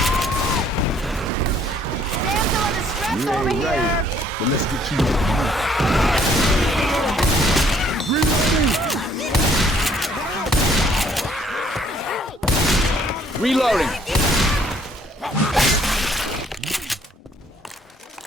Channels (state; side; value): normal; both; correlation 0.62